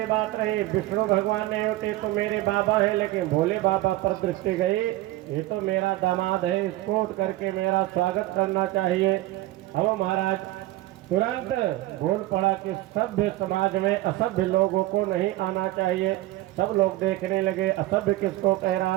बात नहीं, विष्णु भगवान नहीं उठे तो मेरे बाबा है, लेकिन भोले बाबा पर दृष्टि गई, ये तो मेरा दामाद है, इसको उठ करके मेरा स्वागत करना चाहिए। अब महाराज तुरंत बोल पड़ा कि सभ्य समाज में असभ्य लोगों को नहीं आना चाहिए। सब लोग देखने लगे, असभ्य किसको कह रहा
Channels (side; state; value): left; quieter; 16.8 dB